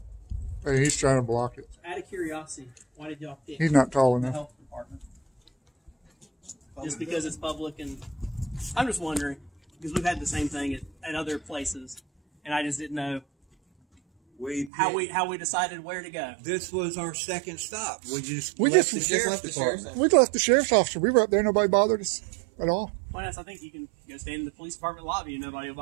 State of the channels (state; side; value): drops out; left; at 14.7 s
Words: Hey, he's trying to block it. Out of curiosity, why did y'all pick He's not tall the enough. health department? Just because it's public, and I'm just wondering because we've had the same thing at other places, and I just didn't know how we decided where to go. This was our second stop. We just We left just- the we just sheriff's left the department. sheriff's We left the sheriff's officer. We were up there. Nobody bothered us at all. Well, I think you can go stand in the police department lobby and nobody will